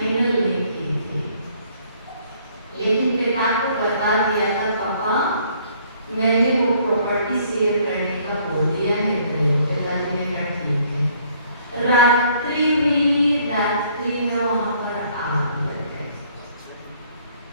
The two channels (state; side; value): inverted; both; correlation -0.62